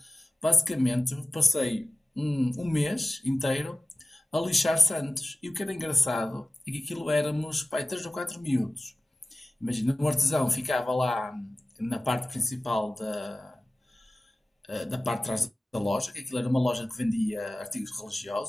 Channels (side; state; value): both; normal; correlation 0.95